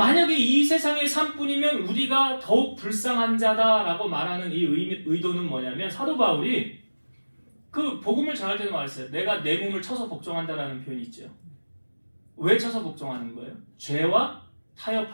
이 세상의 삶뿐이면 우리가 더욱 불쌍한 자다라고 말하는 이 의도는 뭐냐면 사도 바울이 그 복음을 전할 때도 말했어요. 내가 내 몸을 쳐서 복종한다라는 표현이 있죠. 왜 쳐서 복종하는 거예요? 죄와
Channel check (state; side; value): inverted; both; correlation -1.00